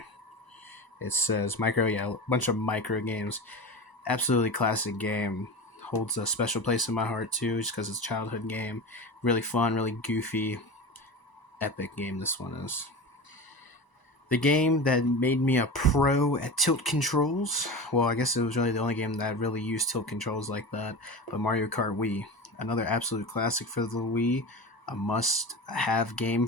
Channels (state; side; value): late; right; 1.0 ms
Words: It says micro, yeah, a bunch of micro games. Absolutely classic game. Holds a special place in my heart too, just because it's a childhood game. Really fun, really goofy, epic game this one is. The game that made me a pro at tilt controls, well, I guess it was really the only game that really used tilt controls like that, but Mario Kart Wii. Another absolute classic for the Wii, a must-have game